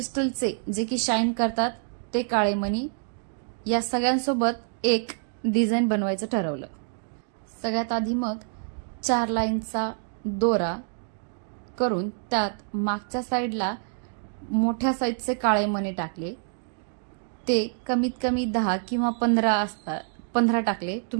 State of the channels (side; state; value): left; silent; 60 dB below the other